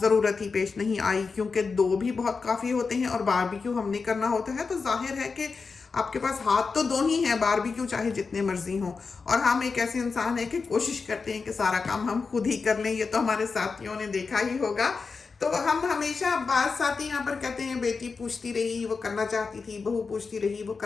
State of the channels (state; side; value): quieter; right; 4.8 dB